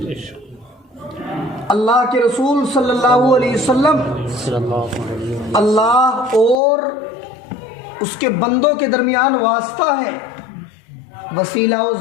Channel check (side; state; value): right; drops out; at 6.6 s